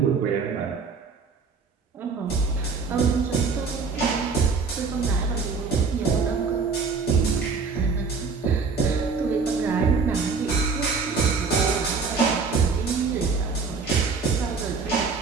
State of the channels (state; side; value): quieter; left; 4.8 dB